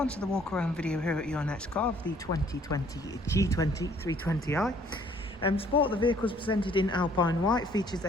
to the walk around video here at your next car of the 2020 G20 320i. M Sport, the vehicle is presented in Alpine white, features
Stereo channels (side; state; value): both; normal; correlation 0.61